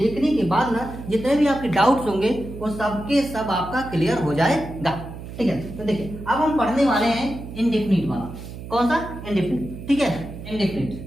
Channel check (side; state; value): right; noise; hum, 11 dB below the sound